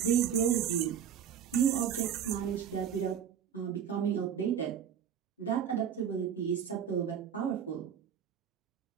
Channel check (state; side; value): quieter; left; 8.5 dB